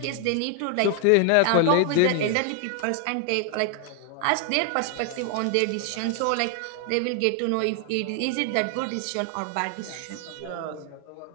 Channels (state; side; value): different; both; correlation 0.00